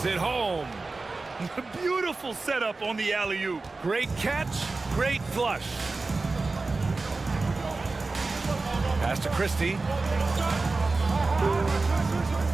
it home. Beautiful setup on the alley-oop. Great catch, great flush. Pass to Christie.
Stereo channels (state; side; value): quieter; left; 3.6 dB